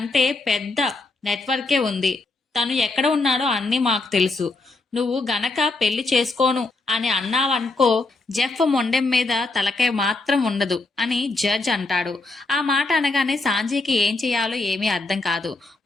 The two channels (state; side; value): quieter; right; 3.3 dB